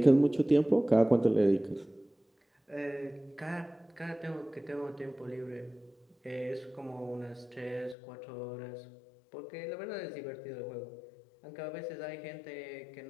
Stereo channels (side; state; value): right; drops out; at 8.0 s